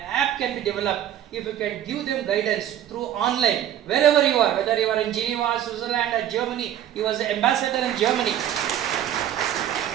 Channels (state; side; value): quieter; left; 11.0 dB